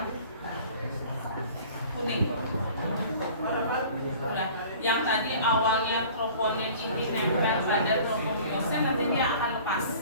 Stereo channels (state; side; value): inverted; both; correlation -0.46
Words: kuning. Nah, yang tadi awalnya troponin ini nempel pada tropomyosin, nanti dia akan lepas.